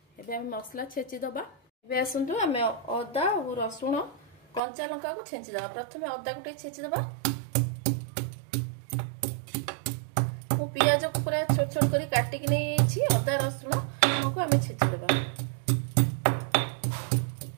एबे आम मसला छेची दबा। एबे आसतु आम अदा और रसुण कंचा लंका को छेची दबा। प्रथम अदा को छेची दबा मु पियाज को पूरा छोट छोट कर काटिक नहीं अदा रसुण को आम छेची दबा।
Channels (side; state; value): left; drops out; at 4.6 s